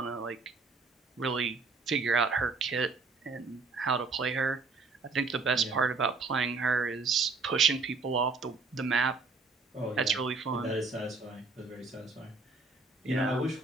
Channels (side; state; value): left; quieter; 4.1 dB